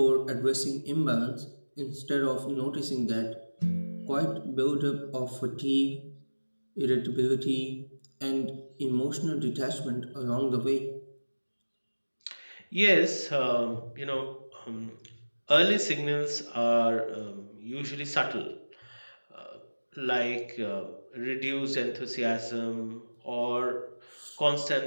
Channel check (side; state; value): both; inverted; correlation -1.00